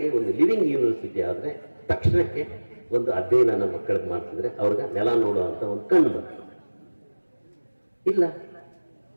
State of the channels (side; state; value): both; inverted; correlation -1.00